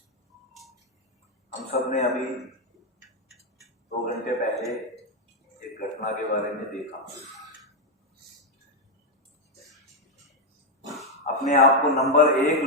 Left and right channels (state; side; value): normal; both; correlation 0.02